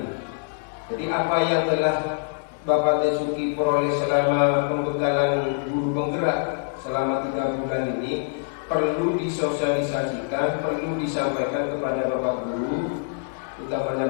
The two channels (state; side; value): silent; right; digital silence